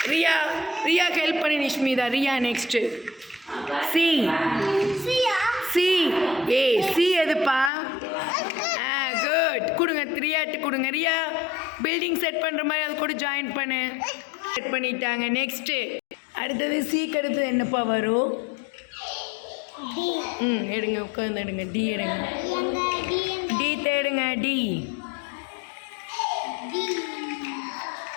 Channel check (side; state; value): right; drops out; at 7.7 s